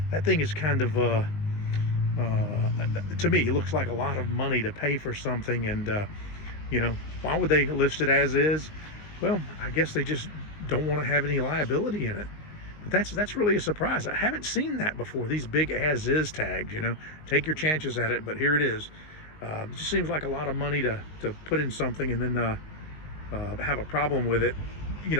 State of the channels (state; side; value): late; right; 19 ms